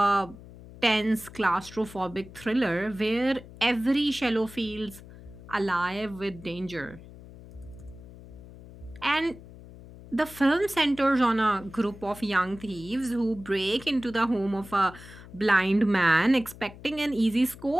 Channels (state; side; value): noise; left; hum, 18 dB below the sound